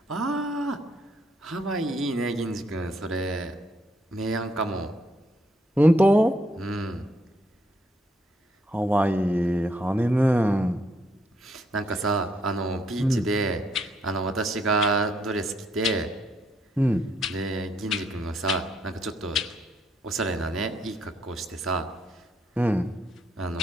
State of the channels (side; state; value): both; normal; correlation 0.73